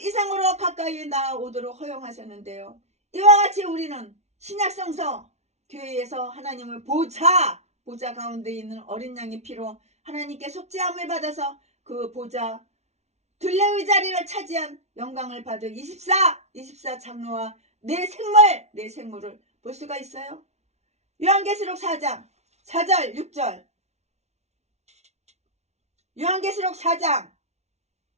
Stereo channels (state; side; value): late; left; 0.32 ms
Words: 이상으로 가까이 나오도록 허용하셨는데요. 이와 같이 우리는 신약성서 교회에서 하나님을 보좌 가운데 있는 어린 양의 피로 하나님께 속죄함을 받아서 그 보좌 둘레의 자리를 차지한 영광을 받을 24 장로와 내 생물을 볼 수가 있어요. 요한계시록 4장 4절 6절. 요한계시록 4장